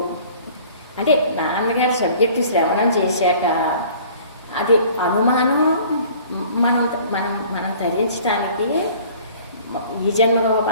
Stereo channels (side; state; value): both; inverted; correlation -0.49